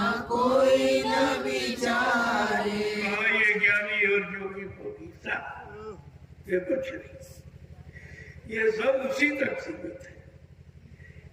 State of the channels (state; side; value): identical; both; correlation 1.00